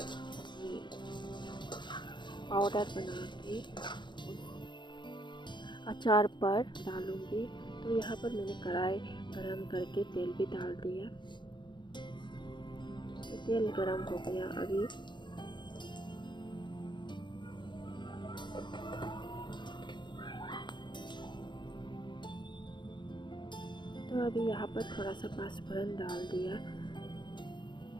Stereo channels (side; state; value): right; late; 0.22 ms